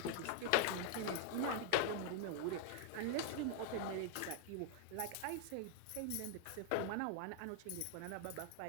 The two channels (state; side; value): different; both; correlation 0.00